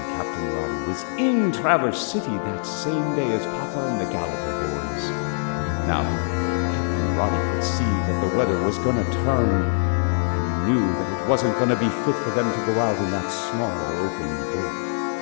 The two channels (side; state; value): right; silent; 63 dB below the other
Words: Captain Roddy was in Traverse City that same day as Papa and the Gallagher boys. Now, Captain Roddy could see that the weather was going to turn. He knew that it wasn't going to be fit for them to go out in that small open boat.